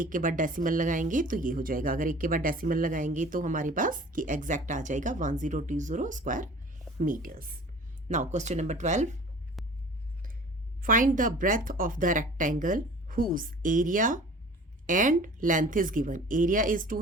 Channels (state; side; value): normal; both; correlation 0.45